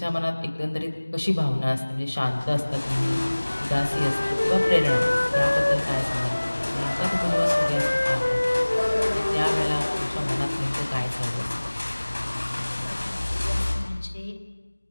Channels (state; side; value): inverted; both; correlation -1.00